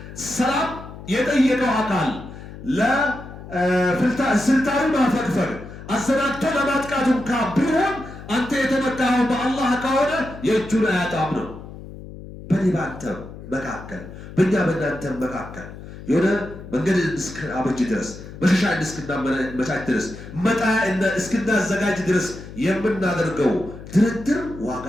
ሰላም የጠየቀው አካል ለስልታዊ ማፈግፈግ አሰናድቶ ለማጥቃቱ እንኳ ቢሆን አንተ የተመካኸው በአላህ ከሆነ የእጁን አያጣም ነው። በኔ በአንተ መካከል በእኛ በእናንተ መካከል የሆነ መንገድ እስክናበጅ ድረስ መሸሻ እስክናመቻች ድረስ መጣያ እስክናዘጋጅ ድረስ የምናደርገው ድርድር ዋጋ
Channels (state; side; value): noise; left; hum, 14 dB below the sound